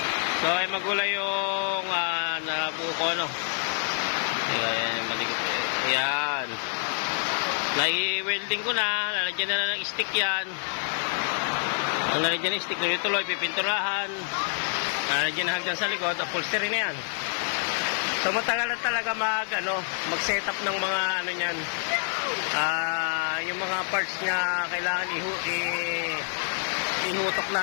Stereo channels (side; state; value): right; silent; digital silence